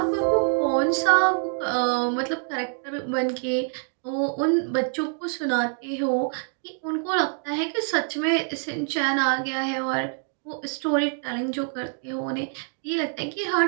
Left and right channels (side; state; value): left; silent; 61 dB below the other